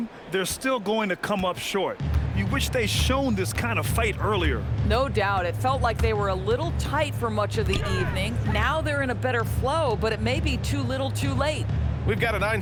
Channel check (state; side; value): identical; both; correlation 1.00